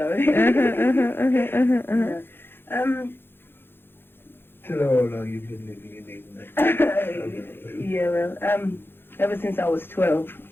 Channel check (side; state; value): right; late; 0.10 ms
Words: Tell her how long you've been living in England. Yeah, well, ever since I was 12.